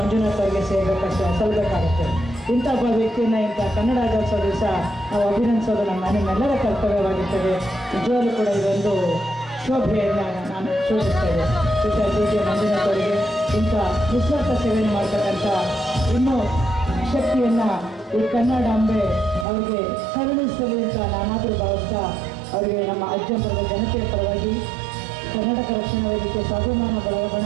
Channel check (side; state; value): left; drops out; at 19.5 s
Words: ಅವರಿಗೆ ಸಲ್ಲಬೇಕಾಗುತ್ತೆ. ಇಂಥ ಒಬ್ಬ ವ್ಯಕ್ತಿಯನ್ನು ಇಂಥ ಕನ್ನಡ ರಾಜ್ಯೋತ್ಸವ ದಿವಸ ನಾವು ಅಭಿನಂದಿಸೋದು ನಮ್ಮೆಲ್ಲರ ಕರ್ತವ್ಯವಾಗಿರ್ತದೆ. ನಿಜವಾಗ್ಲೂ ಕೂಡ ಇದೊಂದು ಶೋಭೆಯನ್ನು ನಾನು ಸೂಚಿಸ್ತೇವೆ. ಡಿ ಮಂಜುನಾಥ್ ಅವರಿಗೆ ಇಂಥ ನಿಸ್ವಾರ್ಥ ಸೇವೆಯನ್ನು ಮಾಡ್ತಕ್ಕಂಥ ಇನ್ನೂ ಶಕ್ತಿಯನ್ನು ಈ ಕನ್ನಡಾಂಬೆ ಅವರಿಗೆ ಕರುಣಿಸಲಿ ಅಂತ ನಾನಾದರೂ ಭಾವಿಸ್ತಾ ಅವರಿಗೆ ನಮ್ಮ ಅಜ್ಜಂಪುರದ ಜನತೆಯ ಪರವಾಗಿ ಕರ್ನಾಟಕ ರಕ್ಷಣಾ ವೇದಿಕೆ ಸ್ವಾಭಿಮಾನ